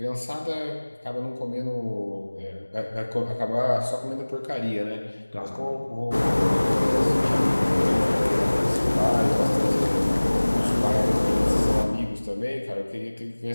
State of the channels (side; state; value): both; inverted; correlation -1.00